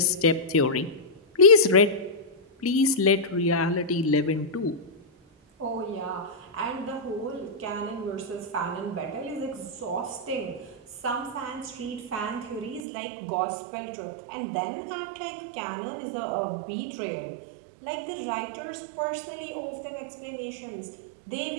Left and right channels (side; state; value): left; drops out; at 12.8 s